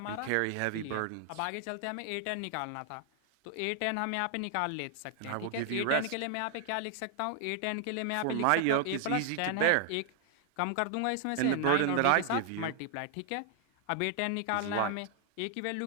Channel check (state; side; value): different; both; correlation 0.00